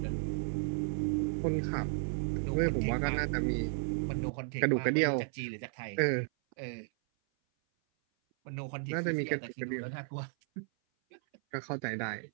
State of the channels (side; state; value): left; silent; 55 dB below the other